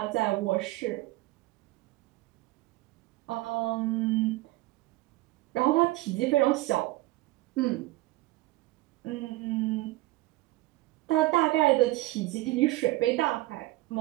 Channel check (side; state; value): left; quieter; 19.3 dB